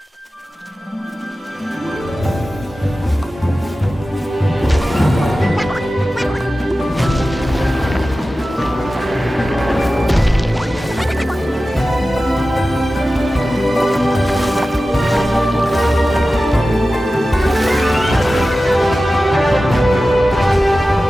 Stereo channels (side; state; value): both; normal; correlation 0.95